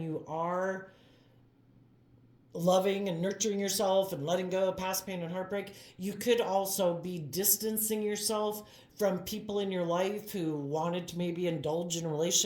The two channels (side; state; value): both; identical; correlation 1.00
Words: you are loving and nurturing yourself and letting go of past pain and heartbreak, you could also be distancing yourself from people in your life who wanted to maybe indulge in a